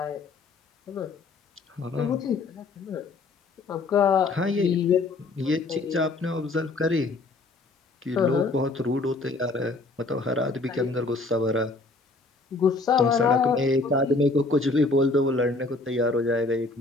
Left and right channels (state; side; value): quieter; right; 3.5 dB